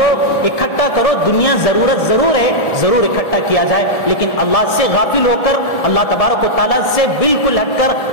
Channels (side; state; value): right; late; 1.7 ms